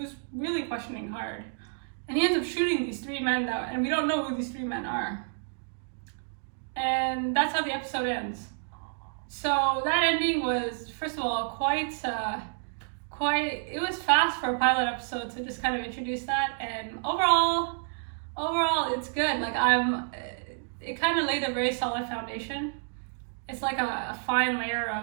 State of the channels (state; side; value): silent; left; digital silence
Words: really questioning hard. And he ends up shooting these three men and we don't know who these three men are. And that's how the episode ends. So that ending was, first of all, it was fast for a pilot episode to just kind of introduce that. And overall, it's good. Like it kind of laid a very solid foundation. It's like a fine layer